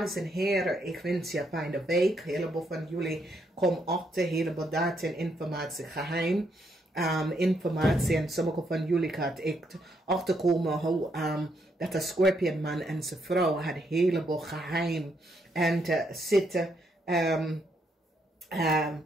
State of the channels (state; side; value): normal; both; correlation 0.76